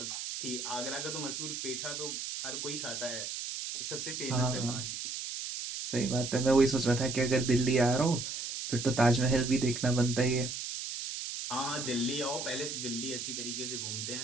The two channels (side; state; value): right; noise; hiss, 5 dB below the sound